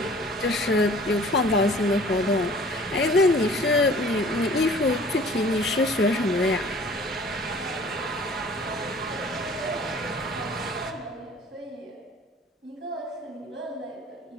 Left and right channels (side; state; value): both; normal; correlation 0.49